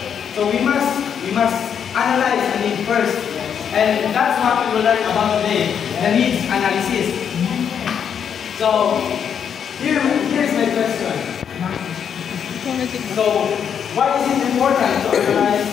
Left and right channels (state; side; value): quieter; right; 7.9 dB